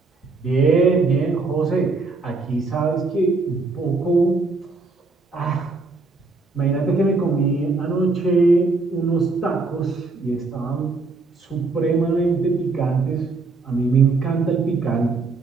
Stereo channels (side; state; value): left; quieter; 3.8 dB